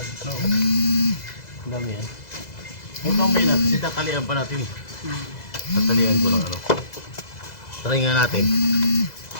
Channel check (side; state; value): right; late; 2.0 ms